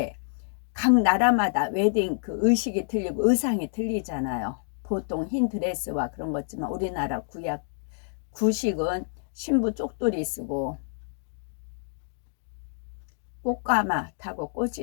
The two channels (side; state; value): right; silent; digital silence